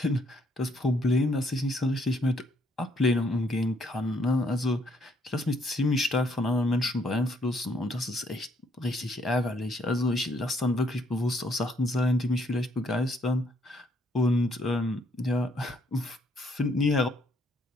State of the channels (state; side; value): normal; both; correlation 0.68